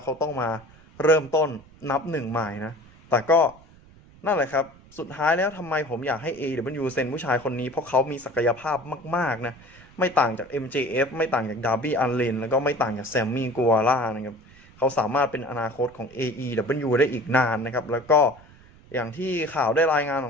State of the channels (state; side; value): noise; right; rumble, 24 dB below the sound